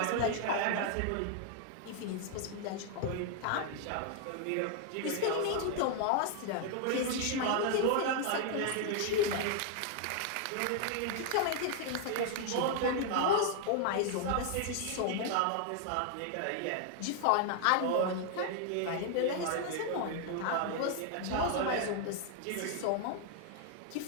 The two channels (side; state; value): both; different; correlation 0.00